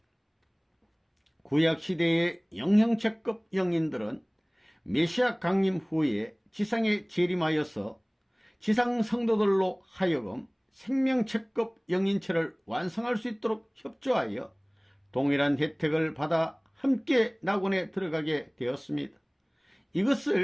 구약시대의 영형체급 영인들은 메시아 강림 후에 지상에 재림하여서 지상 성도들로 하여금 생명체급 영인체를 완성할 수 있도록 협조하여 동일한 혜택을 받아 함께 낙원에 들어가게 되었습니다.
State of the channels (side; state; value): both; identical; correlation 1.00